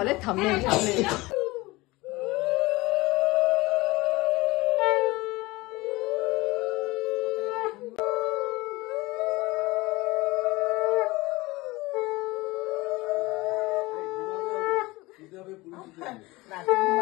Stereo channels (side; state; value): right; quieter; 21.4 dB